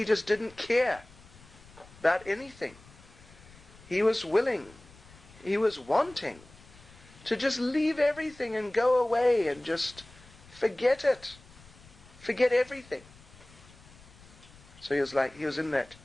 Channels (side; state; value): left; noise; rumble, 23 dB below the sound